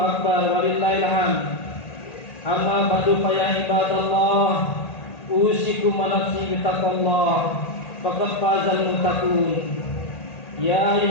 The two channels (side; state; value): right; late; 1.8 ms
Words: walillahil hamd. Amma ba'du fa ya ibadallah, usikum wa nafsi bittaqwallah faqad fazal muttaqun. Ya